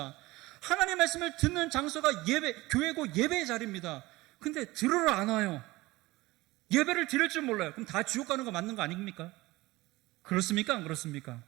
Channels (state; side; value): quieter; left; 20.0 dB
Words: 하나님 말씀을 듣는 장소가 교회고 예배의 자리입니다. 근데 들으러 안 와요. 예배를 드릴 줄 몰라요. 그럼 다 지옥 가는 거 맞는 거 아닙니까? 그렇습니까? 안 그렇습니까?